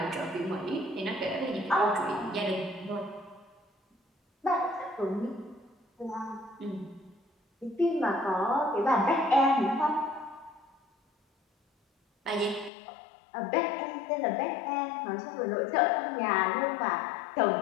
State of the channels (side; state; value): right; drops out; at 12.7 s